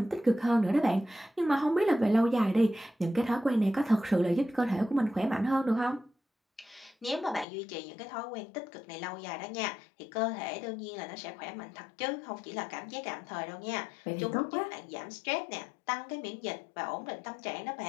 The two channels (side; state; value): right; drops out; at 7.5 s